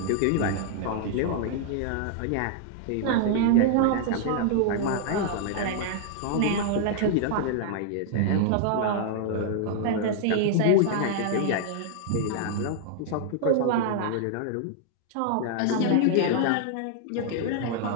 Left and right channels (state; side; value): different; both; correlation -0.01